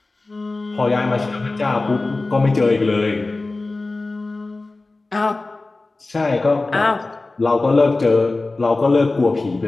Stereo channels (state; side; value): quieter; right; 3.3 dB